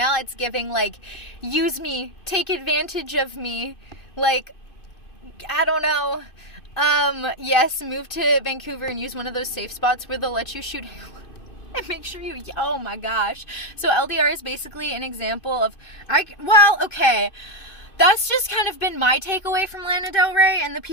it's giving like, use me, take advantage of me. Like, I don't know. Yes, move to Vancouver and use one of those safe spots where they'll let you shoot and make sure you, oh my gosh. So LDR is basically an example of, okay, that's just kind of been my takeaway from Lana Del Rey and the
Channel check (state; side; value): late; right; 2.5 ms